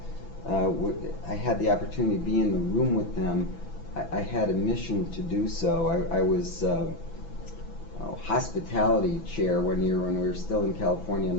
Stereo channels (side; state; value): right; late; 6.0 ms